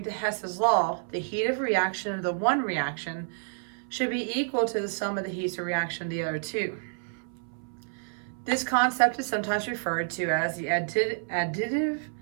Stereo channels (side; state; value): left; silent; 59 dB below the other